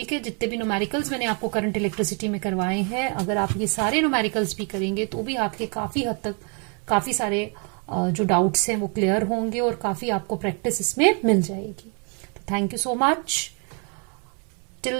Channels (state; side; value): quieter; left; 38.1 dB